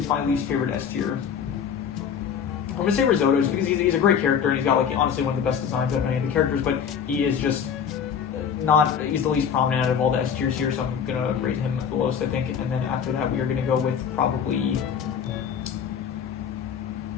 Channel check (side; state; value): right; quieter; 7.6 dB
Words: my least favorite S tier? I'm gonna say Risotto just because he's a great character and he's got like honestly one of the best designs of any of the characters, but he is just he's the least prominent out of all the S tiers here, so I'm gonna rate him the lowest, I think. And then after that, we are gonna go with probably